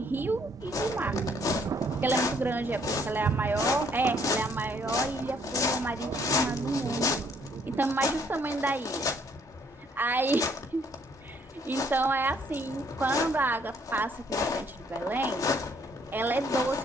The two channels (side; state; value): both; normal; correlation 0.66